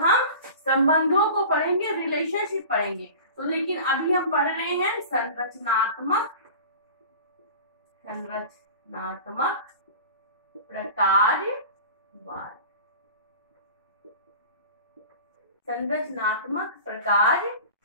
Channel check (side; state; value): both; inverted; correlation -0.37